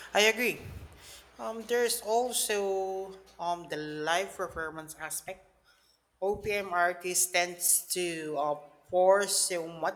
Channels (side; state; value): both; identical; correlation 1.00